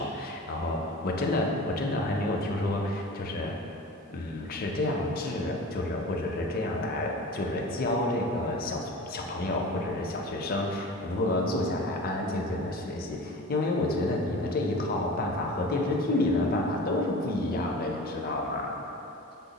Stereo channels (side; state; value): both; normal; correlation 0.36